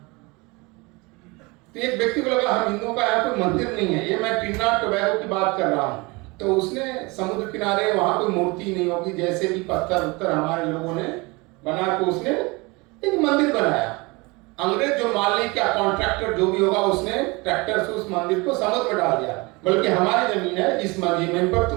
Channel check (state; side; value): quieter; left; 25.6 dB